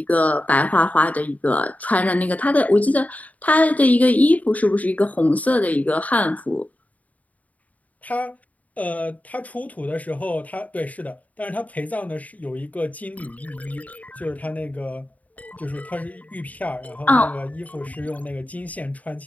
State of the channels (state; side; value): late; right; 0.072 ms